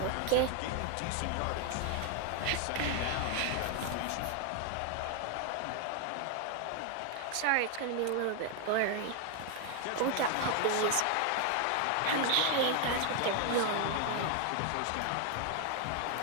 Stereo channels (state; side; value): different; both; correlation 0.00